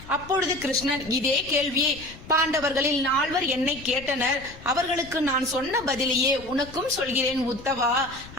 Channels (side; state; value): left; noise; rumble, 18 dB below the sound